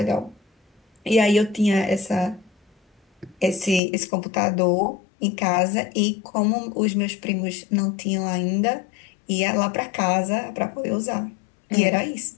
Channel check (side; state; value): right; drops out; at 3.8 s